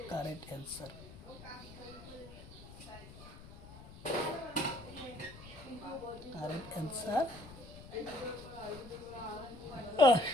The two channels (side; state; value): left; noise; rumble, 16 dB below the sound